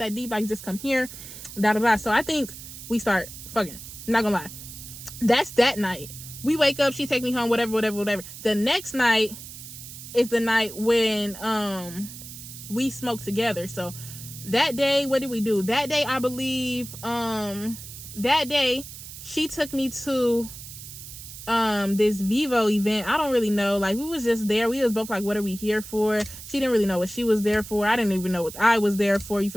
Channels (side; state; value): right; noise; hiss, 13 dB below the sound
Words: deep. Like, just come here. Da da da. So I think we start fucking. I'm not gonna lie. That's that night. We wake up, she take me home, whatever. The next night is the night when we smoke together. So that day, what did we do? That day, I believe, that day she took me to this Vivo event. I don't really know. Like, we was just there. We was both like, what are we here for? She didn't really know what she was there for. I didn't even know what I was there for. You